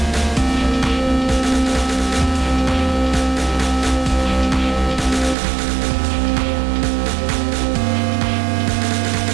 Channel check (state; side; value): drops out; left; at 5.4 s